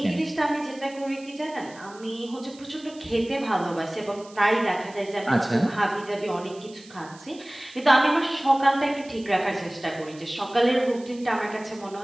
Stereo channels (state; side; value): noise; right; hiss, 22 dB below the sound